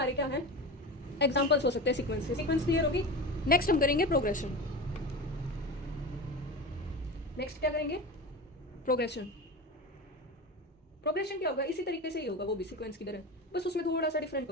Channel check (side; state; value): both; normal; correlation 0.27